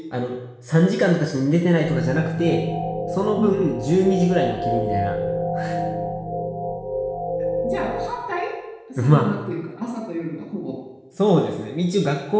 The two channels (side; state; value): both; identical; correlation 1.00